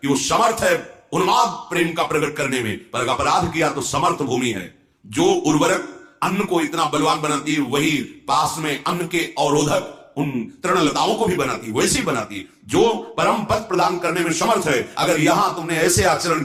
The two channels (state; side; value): identical; both; correlation 1.00